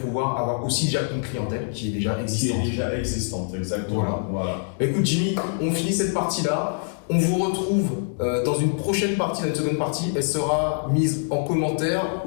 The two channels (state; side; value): silent; right; 62 dB below the other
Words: avoir aussi déjà une clientèle qui est déjà existante. Exactement. Voilà. Écoute Jimmy, on finit cette partie-là. On vous retrouve dans une prochaine partie, dans une seconde partie. Elle sera mise en commentaire